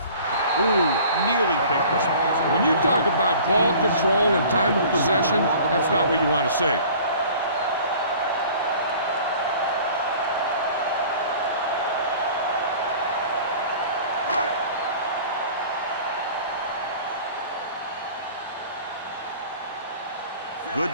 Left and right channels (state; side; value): inverted; both; correlation -0.46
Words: Ooh, nearly picked off. When you talk about ball control and time of possession, that's not what you want to see. Good